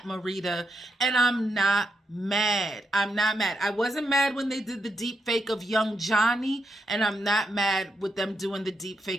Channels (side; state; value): both; normal; correlation 0.82